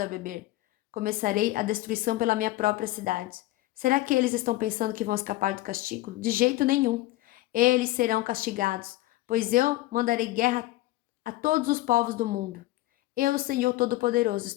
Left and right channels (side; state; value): right; quieter; 17.6 dB